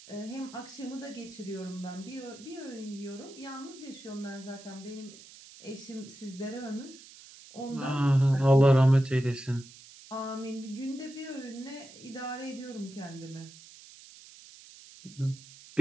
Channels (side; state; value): right; noise; hiss, 19 dB below the sound